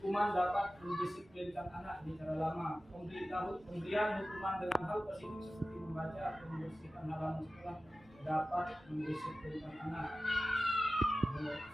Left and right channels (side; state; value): both; normal; correlation 0.96